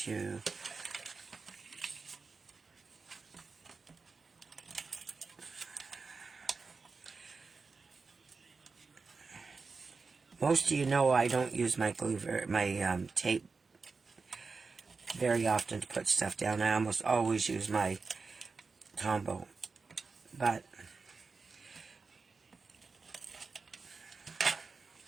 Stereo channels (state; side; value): quieter; left; 4.4 dB